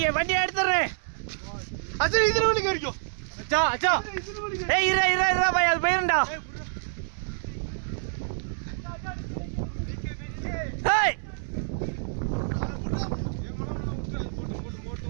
வண்டியை எடுத்துறேன். அச்சா இதுல வண்டி கறிக்கோ. அச்சா அச்சா. ஏய் இரு இரு இரு பாய் அது போயிரண்டா. ஏய்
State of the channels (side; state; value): left; silent; 60 dB below the other